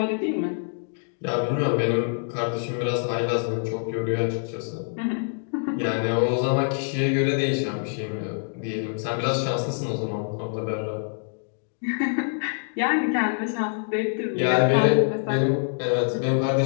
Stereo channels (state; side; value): silent; right; digital silence